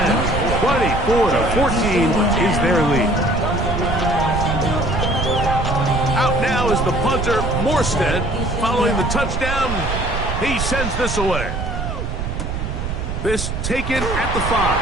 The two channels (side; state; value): right; noise; rumble, 3 dB below the sound